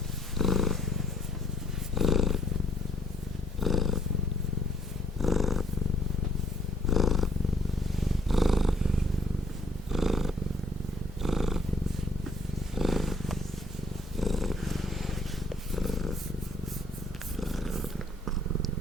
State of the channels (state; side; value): normal; both; correlation 0.62